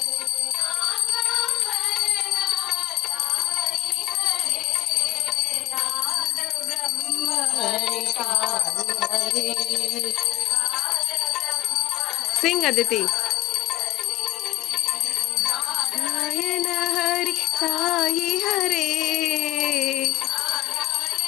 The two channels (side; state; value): right; quieter; 16.0 dB